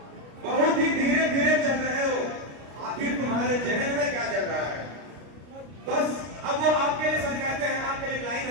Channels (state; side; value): late; left; 33 ms